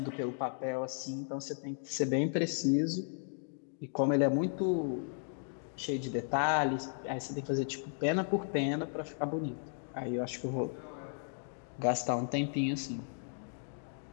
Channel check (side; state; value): right; silent; digital silence